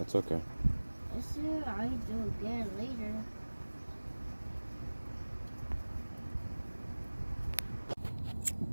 okay. I said I do again later.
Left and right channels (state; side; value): inverted; both; correlation -1.00